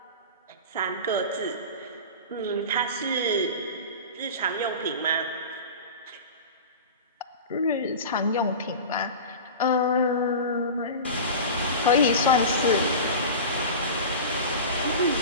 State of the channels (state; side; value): inverted; both; correlation -0.31